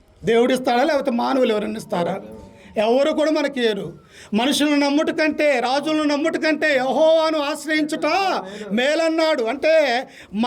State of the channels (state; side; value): identical; both; correlation 1.00